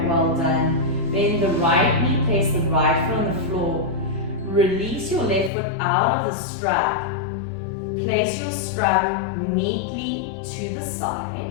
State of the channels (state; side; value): drops out; right; at 5.5 s